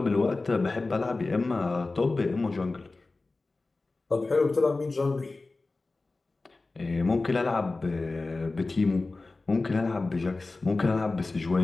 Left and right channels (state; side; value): quieter; right; 3.4 dB